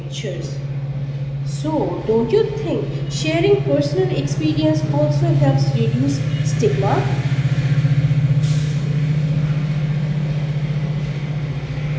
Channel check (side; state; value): both; identical; correlation 1.00